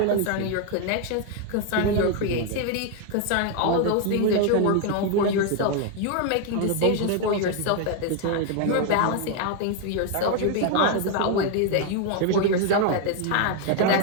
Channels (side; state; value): both; different; correlation 0.01